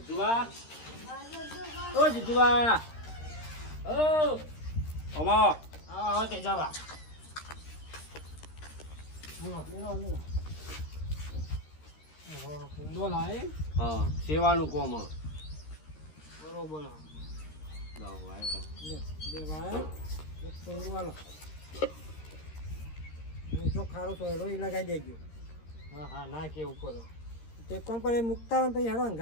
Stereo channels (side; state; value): right; late; 13 ms